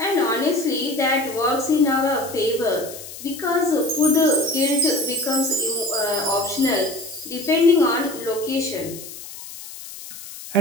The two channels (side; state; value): left; noise; hiss, 13 dB below the sound